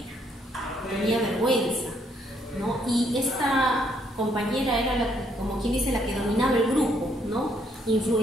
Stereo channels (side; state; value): both; normal; correlation 0.70